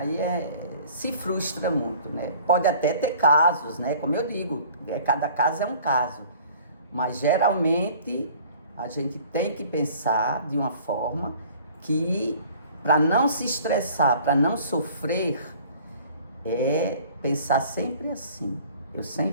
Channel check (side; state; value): both; inverted; correlation -0.50